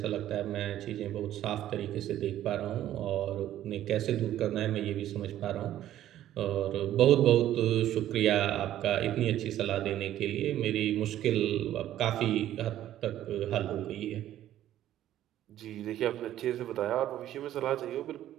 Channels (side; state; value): left; quieter; 12.5 dB